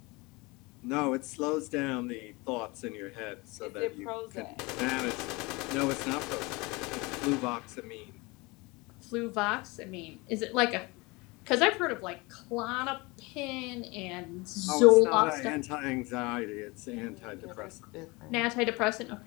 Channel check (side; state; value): right; quieter; 25.0 dB